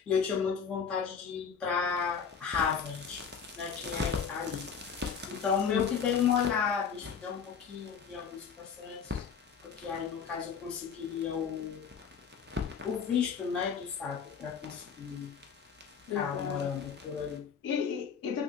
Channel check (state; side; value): quieter; right; 6.6 dB